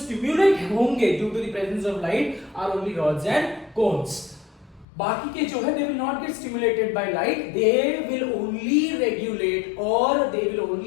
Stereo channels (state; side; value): drops out; right; at 4.9 s